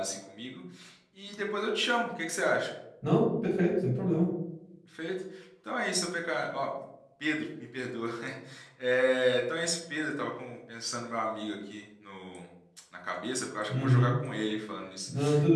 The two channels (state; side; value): identical; both; correlation 1.00